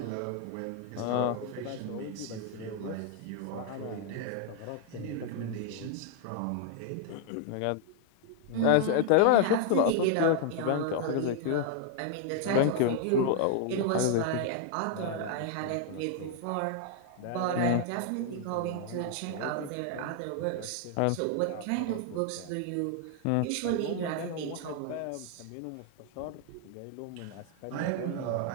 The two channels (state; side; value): different; both; correlation 0.00